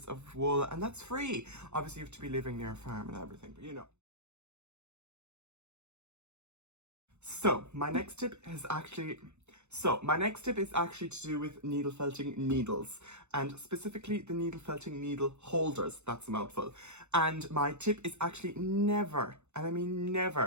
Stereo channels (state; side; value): late; left; 0.82 ms